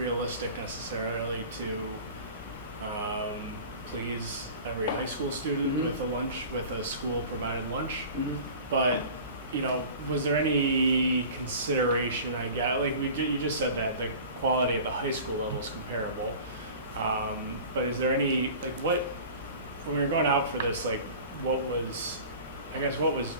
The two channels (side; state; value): both; inverted; correlation -0.40